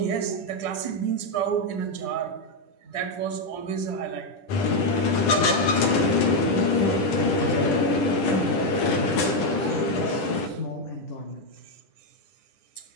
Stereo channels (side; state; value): right; late; 10 ms